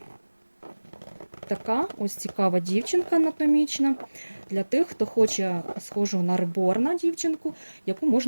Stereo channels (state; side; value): inverted; both; correlation -1.00